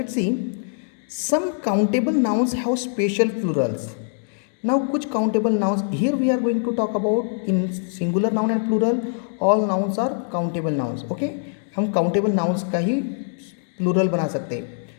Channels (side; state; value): right; silent; digital silence